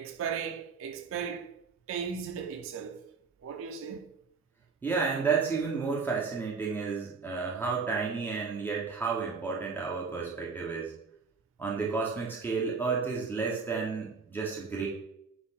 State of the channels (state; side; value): quieter; left; 4.9 dB